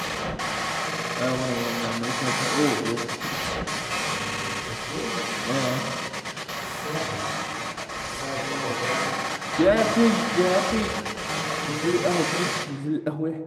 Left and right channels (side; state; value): both; identical; correlation 1.00